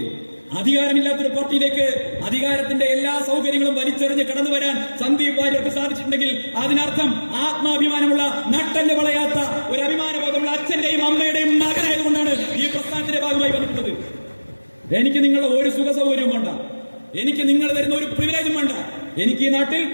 അധികാരമില്ലാത്തൊരു പാർട്ടിയിലേക്ക് അധികാരത്തിന്റെ എല്ലാ സൗകര്യങ്ങളും വലിച്ചെറിഞ്ഞ് കടന്നു വരാൻ സന്ദീപ് വാര്യർക്ക് സാധിച്ചിട്ടുണ്ടെങ്കിൽ അതിനർത്ഥം ആത്മാഭിമാനമുള്ള, നട്ടല് വളയാത്ത, ഒരു അഭിമാനബോധമുള്ള അച്ഛന്റെയും അമ്മയുടെയും മകനായതുകൊണ്ടാണ് ഈ പ്രസ്ഥാനത്തിന്റെ ഭാഗമായി വന്നിട്ടുള്ളത്. എനിക്ക് നിങ്ങളുടെ ഒരു സുഖ സൗകര്യവും വേണ്ട, എനിക്ക് നിങ്ങൾ തരുന്ന ഒരു പ്രിവിലേജും വേണ്ട. എനിക്ക്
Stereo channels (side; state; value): both; inverted; correlation -1.00